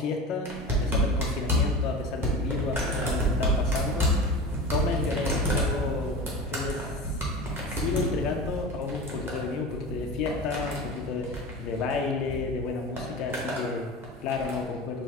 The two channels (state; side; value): normal; both; correlation 0.31